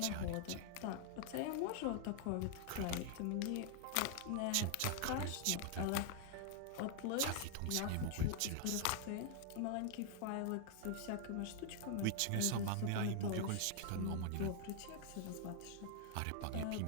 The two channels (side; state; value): both; different; correlation 0.00